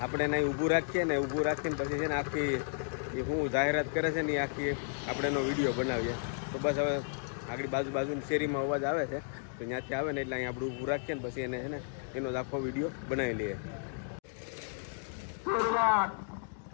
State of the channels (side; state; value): right; silent; digital silence